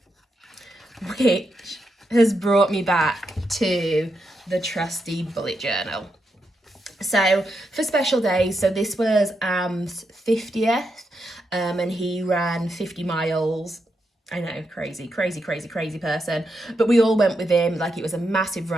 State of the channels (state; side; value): normal; both; correlation 0.84